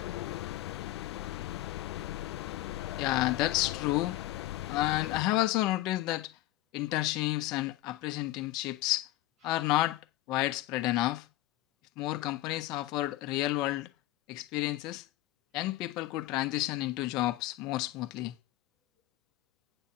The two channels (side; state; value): right; quieter; 16.2 dB